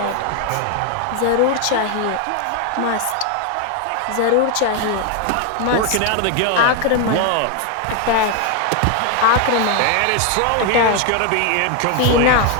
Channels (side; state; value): both; different; correlation 0.01